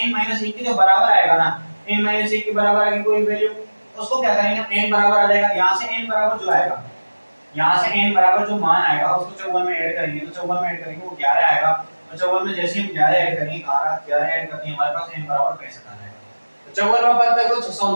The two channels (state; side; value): inverted; both; correlation -1.00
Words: - 1 के जो बराबर आएगा ना, n - 1 के बराबर आएगी कोई वैल्यू, उसको क्या करेंगे n बराबर आ जाएगा, यहां से n बराबर जो आएगा, यहां से n बराबर जो मान आएगा उसको 54 में ऐड करेंगे, तो 54 में ऐड करेंगे वो 11 आएगा, और 54 में जैसे हम 11 ऐड करेंगे 11 ऐड करते हैं हमारे पास n बराबर 65 आ जाएगा। 54वां पद तक तो